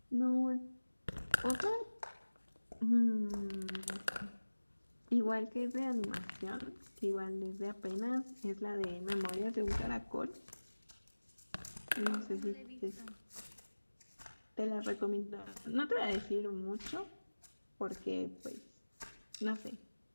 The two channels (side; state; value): both; inverted; correlation -1.00